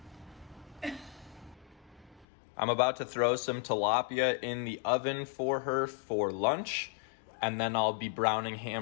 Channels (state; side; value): drops out; right; at 2.2 s